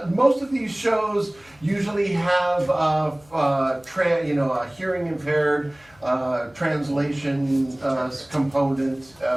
most of these shows usually have a hearing impaired translation component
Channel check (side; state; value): left; noise; hum, 29 dB below the sound